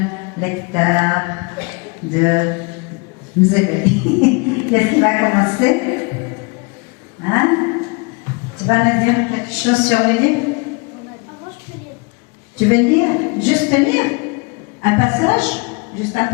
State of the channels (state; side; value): quieter; right; 30.3 dB